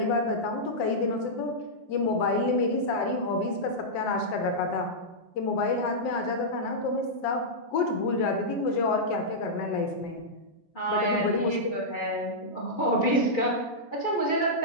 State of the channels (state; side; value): late; right; 6.5 ms